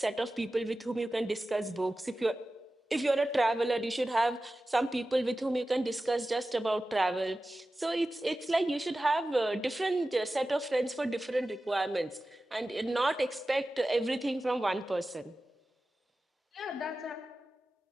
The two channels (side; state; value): both; normal; correlation 0.95